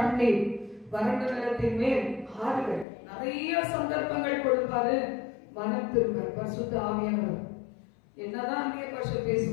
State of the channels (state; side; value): drops out; right; at 2.9 s